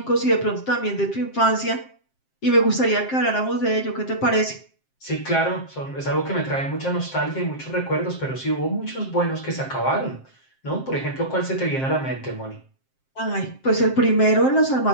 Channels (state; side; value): late; right; 7.6 ms